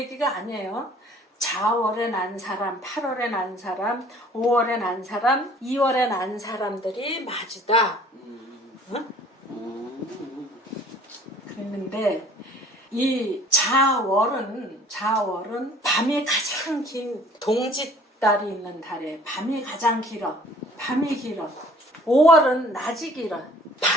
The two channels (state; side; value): normal; both; correlation 0.53